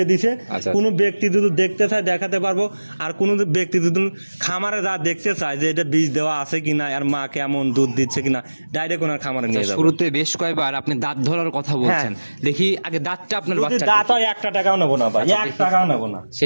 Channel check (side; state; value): both; inverted; correlation -1.00